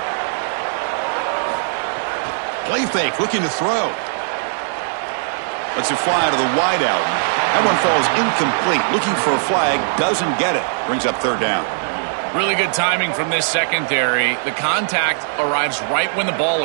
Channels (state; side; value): silent; left; 66 dB below the other